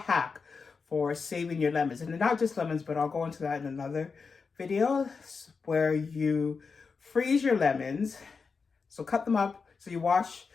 for saving your lemons, and not just lemons, but I'll go into that in another video, where you freeze your lemons. So cut them up. So you wash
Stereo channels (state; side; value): quieter; right; 5.0 dB